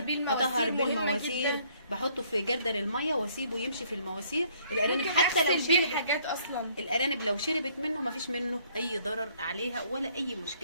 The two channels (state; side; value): inverted; both; correlation -0.63